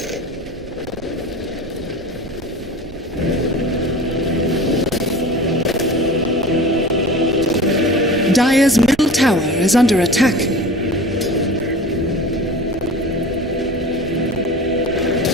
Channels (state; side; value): noise; right; rumble, 17 dB below the sound